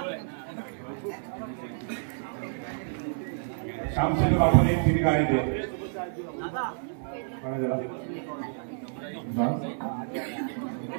श्यामचंद्र आपण एक तिने गाणी दे.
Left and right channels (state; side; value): silent; left; digital silence